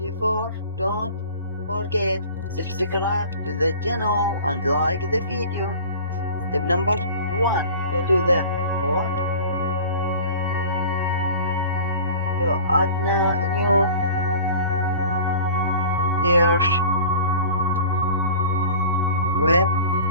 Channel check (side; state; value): both; inverted; correlation -0.41